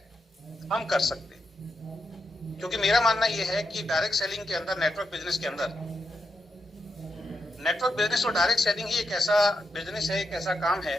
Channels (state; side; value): normal; both; correlation 0.85